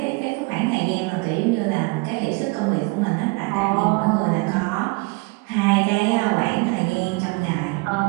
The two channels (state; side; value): quieter; left; 28.1 dB